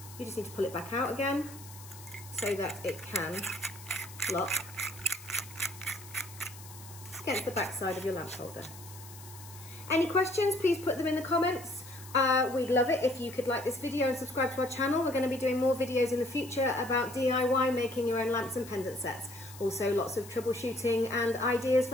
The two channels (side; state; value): left; noise; hiss, 17 dB below the sound